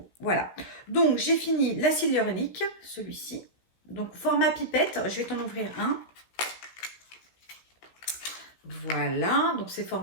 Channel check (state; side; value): late; right; 16 ms